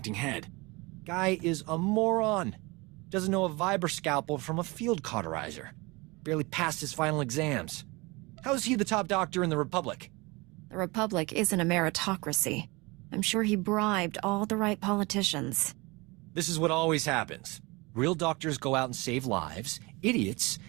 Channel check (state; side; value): quieter; left; 25.0 dB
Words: head. Guy is a moron. Doesn't know a Viber scalpel from a field cauterizer. Barely passed his final exams. How is he the top doctor in the Republic? The Republic isn't a meritocracy. I'm sure he bribed all the right politicians. This is what always happens. Real doctors go out and save lives. Idiots